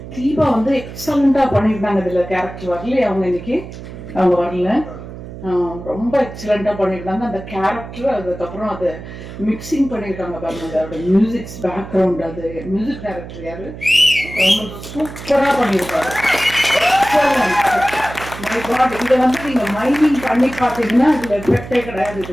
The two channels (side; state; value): right; noise; hum, 12 dB below the sound